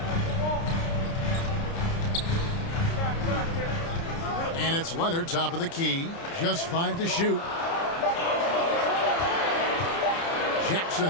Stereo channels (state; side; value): late; right; 30 ms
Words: And it's Leonard, top of the key. Just 5 to shoot.